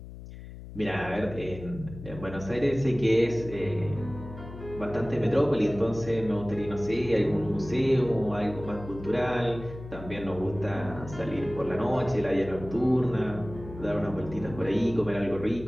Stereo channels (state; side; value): noise; left; hum, 13 dB below the sound